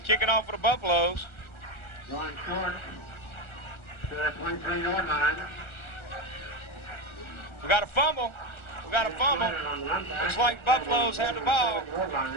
kicking off for the Buffaloes. Going short to the 23-yard line. We got a fumble. Looks like Buffaloes have the ball.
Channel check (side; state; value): right; late; 1.4 ms